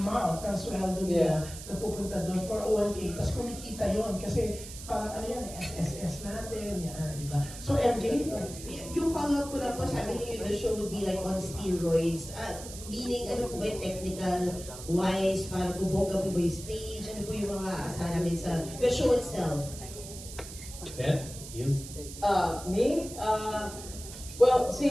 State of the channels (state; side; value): noise; right; hiss, 13 dB below the sound